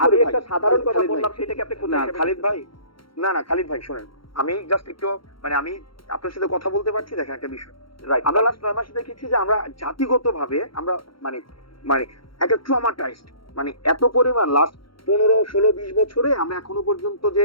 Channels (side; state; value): right; late; 0.73 ms